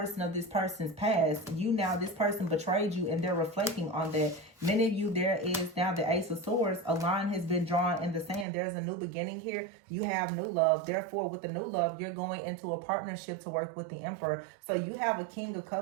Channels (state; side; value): drops out; left; at 8.5 s